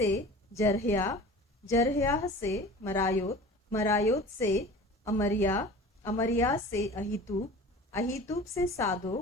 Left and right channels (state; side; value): normal; both; correlation 0.39